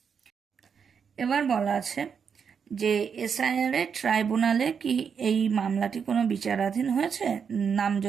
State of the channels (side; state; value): left; quieter; 6.7 dB